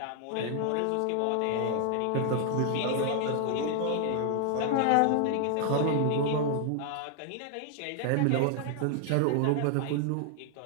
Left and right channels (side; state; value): both; different; correlation 0.00